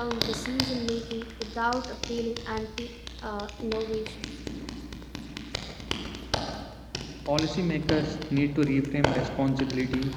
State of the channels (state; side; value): identical; both; correlation 1.00